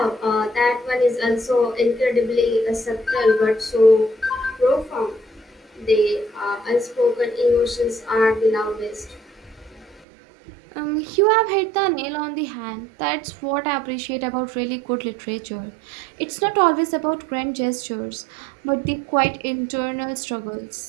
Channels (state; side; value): drops out; left; at 10.1 s